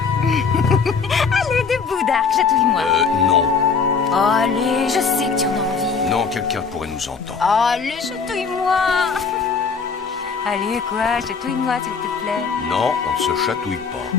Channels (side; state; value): right; quieter; 5.4 dB